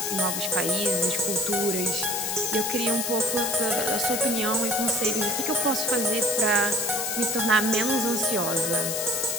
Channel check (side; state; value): left; noise; hiss, 2 dB below the sound